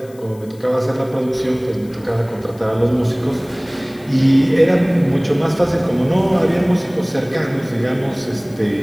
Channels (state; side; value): noise; left; hiss, 26 dB below the sound